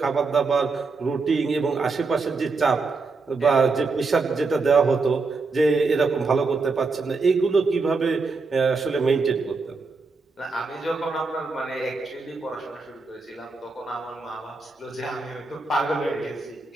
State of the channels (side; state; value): left; quieter; 4.1 dB